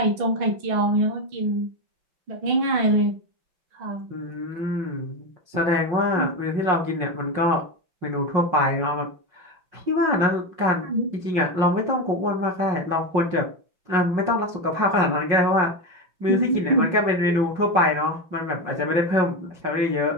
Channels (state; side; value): late; left; 5.6 ms